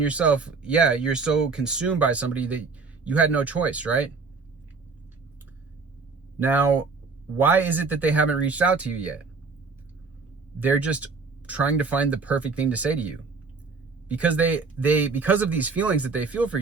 you're so consumed by somebody that you had no choice, right? Now, why is it that they haven't reached out to you yet? They're just trying to find the perfect thing to say to you. Because because of these feelings that they feel for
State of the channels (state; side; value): quieter; left; 4.5 dB